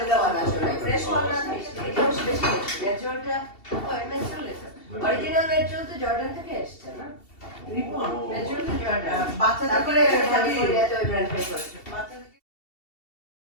fresh করা থাকে এটাও বেশি ন্যাচারালটা অরিজিনাল ন্যাচারাল তো জর্ডান থেকে এসেছে না ন্যাচারাল তো জর্ডান বাচ্চাদের করে ক্যালিফোর্নিয়াতে ওই ব্র্যান্ড পেয়ে করছে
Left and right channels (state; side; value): late; right; 2.7 ms